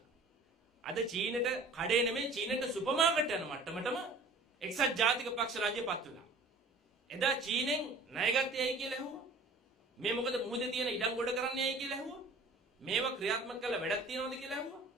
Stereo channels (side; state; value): left; quieter; 3.1 dB